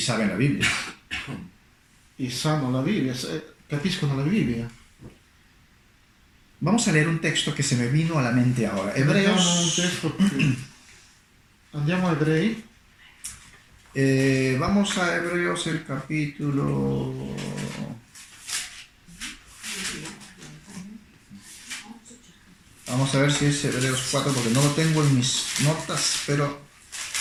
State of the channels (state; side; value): identical; both; correlation 1.00